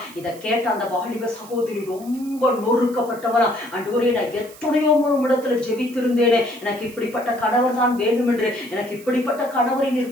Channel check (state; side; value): noise; right; hiss, 20 dB below the sound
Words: இதை கேட்ட அந்த வாலிப சகோதரி ரொம்ப நொறுக்கப்பட்டவனா, ஆண்டவரே நான் எத்தனையோ இடத்துல ஜெபித்திருந்தேனே, எனக்கு இப்படிப்பட்ட கணவர் தான் வேண்டும் என்று, எனக்கு இப்படிப்பட்ட கணவரை